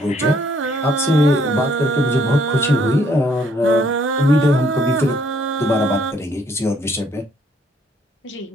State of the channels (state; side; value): normal; both; correlation 0.66